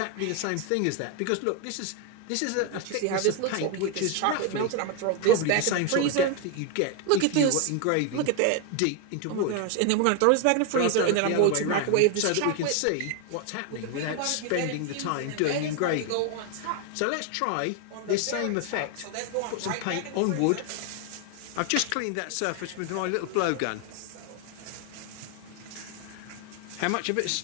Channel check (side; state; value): both; different; correlation 0.01